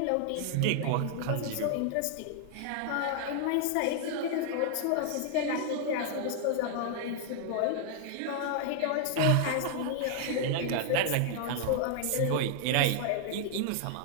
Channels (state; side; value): different; both; correlation 0.00